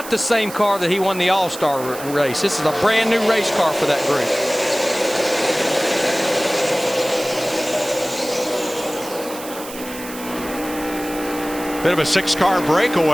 the same car that he won the All-Star race. This is a brand new race car for that group. Bit of a 6-car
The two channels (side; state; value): right; noise; hiss, 13 dB below the sound